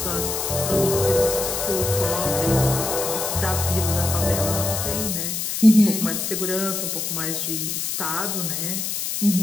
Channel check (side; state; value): left; noise; hiss, 2 dB below the sound